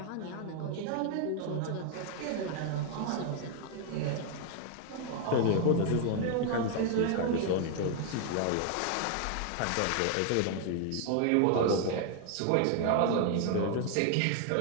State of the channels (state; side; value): different; both; correlation 0.00